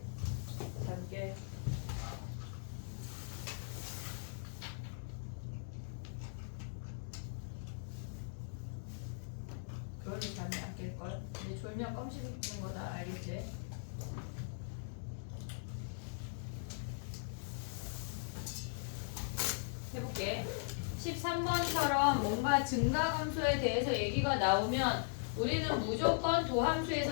잡게. 그러니 잠이 안 깰걸. 근데 졸면 껌 씹는 거다 알겠지? 해볼게. 13번처럼 뭔가 증가함수에 대해서 얘기가 나오면 우리는 무조건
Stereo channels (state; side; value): silent; right; digital silence